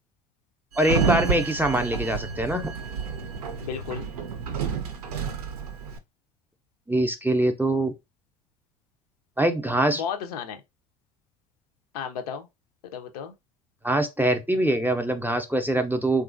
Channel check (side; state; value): both; normal; correlation 0.56